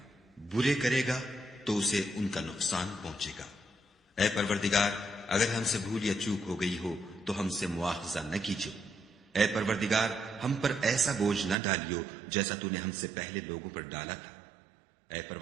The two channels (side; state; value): left; drops out; at 11.6 s